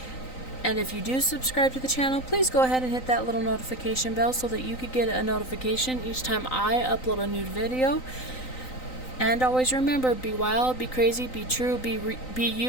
And if you do subscribe to the channel, please go ahead and hit that little notification bell so that you could get a notification each time I upload a new video. And always remember, be wild, be crazy, be true, be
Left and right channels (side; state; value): right; late; 3.9 ms